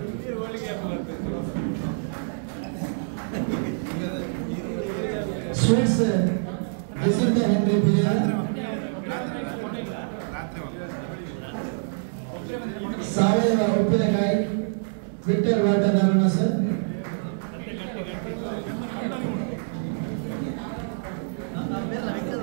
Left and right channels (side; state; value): left; silent; 61 dB below the other